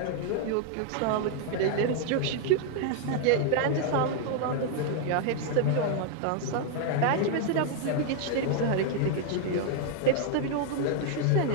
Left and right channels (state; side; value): different; both; correlation 0.00